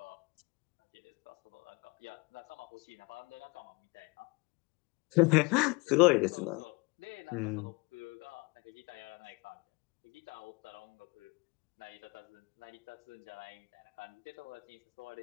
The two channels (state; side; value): quieter; right; 27.4 dB